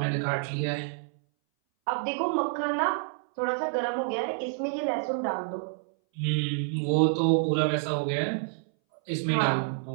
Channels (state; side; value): silent; left; 59 dB below the other